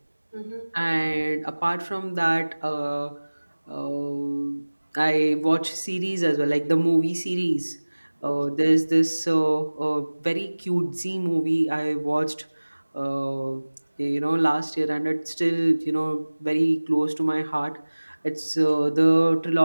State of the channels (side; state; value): both; inverted; correlation -1.00